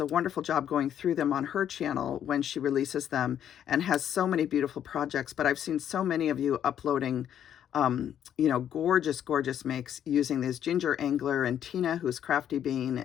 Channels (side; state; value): right; quieter; 9.8 dB